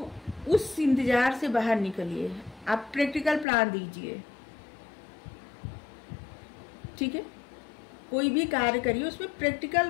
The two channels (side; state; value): right; drops out; at 3.5 s